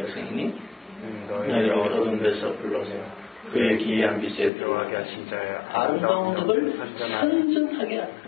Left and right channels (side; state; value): right; drops out; at 4.5 s